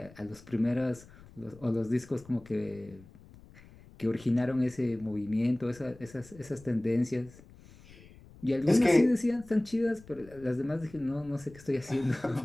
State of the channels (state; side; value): noise; left; rumble, 22 dB below the sound